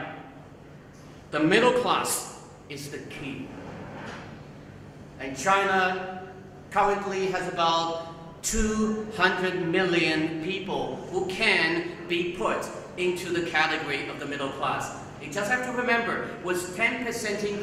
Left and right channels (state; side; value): identical; both; correlation 1.00